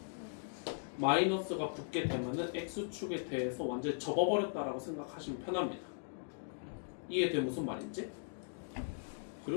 마이너스가 붙게 되면은 x축에 대해서 완전히 접어버렸다라고 생각하시면 편합니다. 이해돼 무슨 말인지?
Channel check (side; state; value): right; silent; digital silence